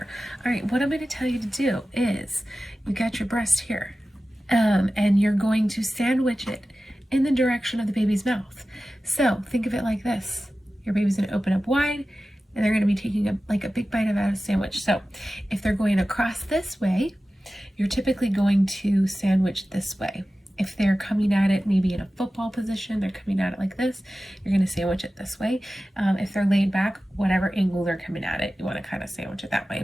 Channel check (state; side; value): normal; both; correlation 0.95